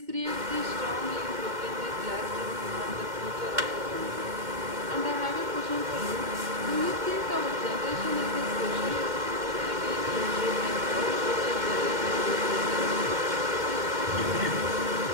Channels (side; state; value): left; late; 2.1 ms